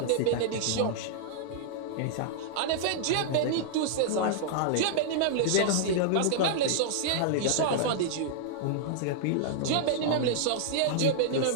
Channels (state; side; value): different; both; correlation -0.01